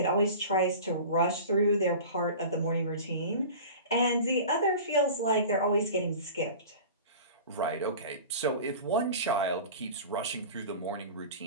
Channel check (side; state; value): both; inverted; correlation -0.37